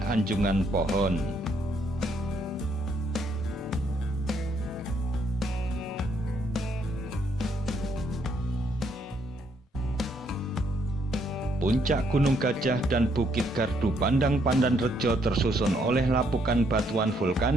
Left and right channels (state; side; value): normal; both; correlation 0.72